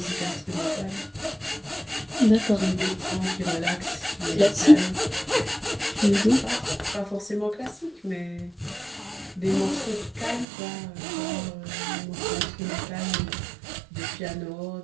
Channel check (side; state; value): left; drops out; at 10.5 s